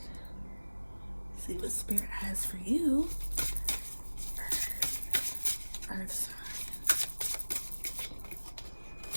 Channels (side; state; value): both; inverted; correlation -1.00